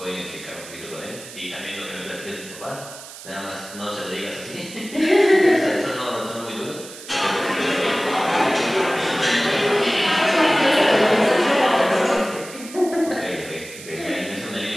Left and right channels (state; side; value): noise; right; hiss, 15 dB below the sound